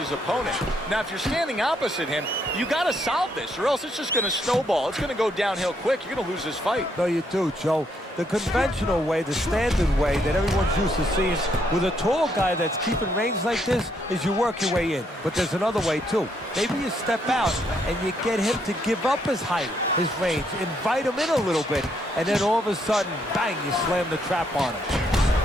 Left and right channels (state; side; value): normal; both; correlation 0.73